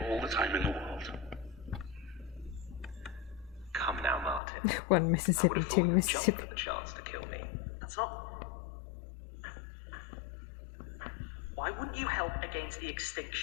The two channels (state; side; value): drops out; right; at 4.4 s